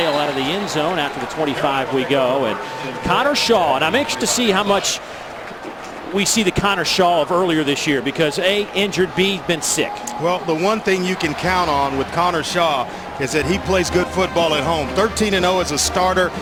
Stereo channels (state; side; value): identical; both; correlation 1.00